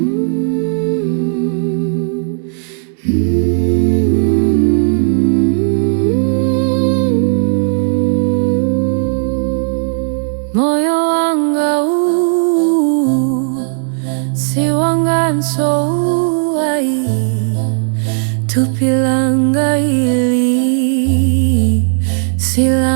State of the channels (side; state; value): left; silent; digital silence